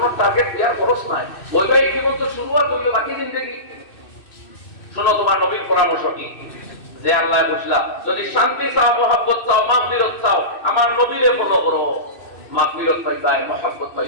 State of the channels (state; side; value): late; right; 2.6 ms